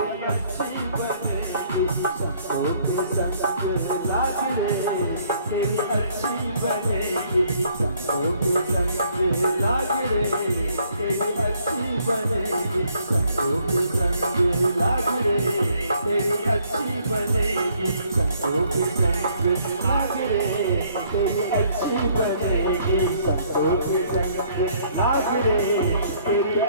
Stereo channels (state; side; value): inverted; both; correlation -0.64